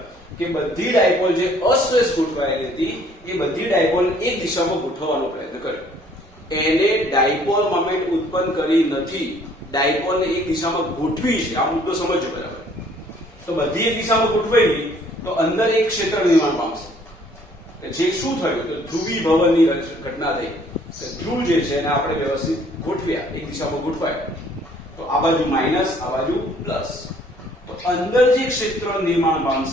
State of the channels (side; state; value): both; normal; correlation 0.59